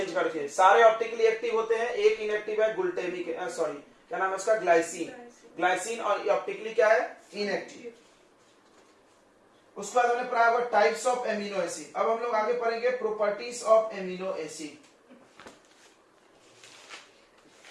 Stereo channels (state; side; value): identical; both; correlation 1.00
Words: करके। सारे ऑप्टिकली एक्टिव होते हैं, एक इनएक्टिव है ग्लूटेमिक, सॉरी क्या नाम है उसका? ग्लाइसिन। ग्लाइसिन और ऑप्टिकली क्या है? इनएक्टिव। उसके बाद हमने पढ़ा होगा टाइप्स ऑफ एमिनो एसिड। अब हम लोग आगे पढ़ेंगे properties of amino acid.